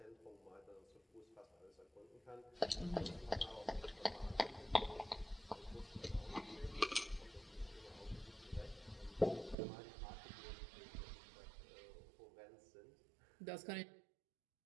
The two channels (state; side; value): drops out; left; at 9.6 s